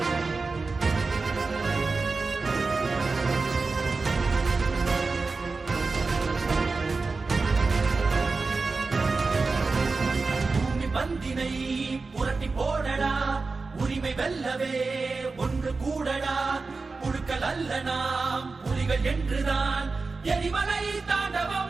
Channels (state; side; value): quieter; left; 4.0 dB